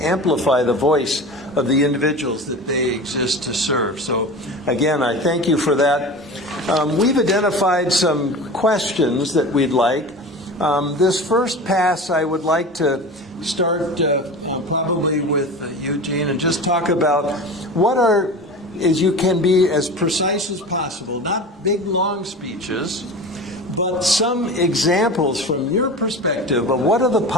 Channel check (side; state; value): both; normal; correlation 0.33